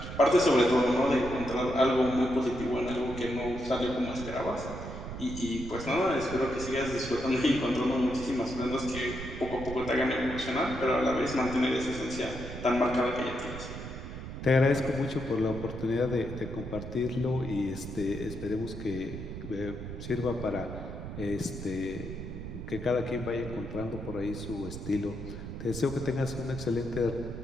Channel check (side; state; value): right; noise; rumble, 8 dB below the sound